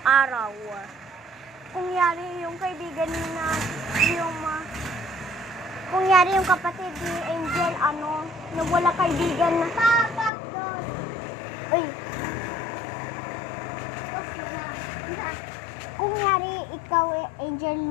araw, kung yari yung kaibigan na kung yari yung kapatid ni Angel, nawala kaibigan na. Uy. Kung yari ikaw,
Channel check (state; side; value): drops out; right; at 10.3 s